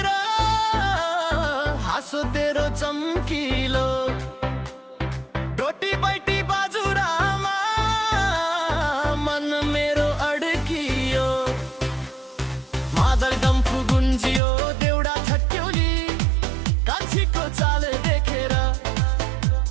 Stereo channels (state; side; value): drops out; left; at 14.4 s